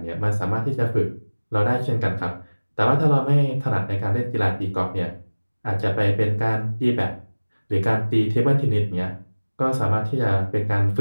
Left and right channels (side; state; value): both; inverted; correlation -1.00